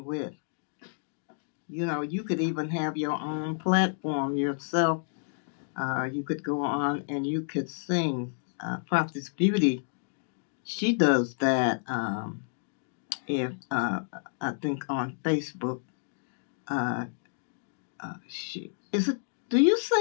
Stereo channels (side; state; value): right; silent; digital silence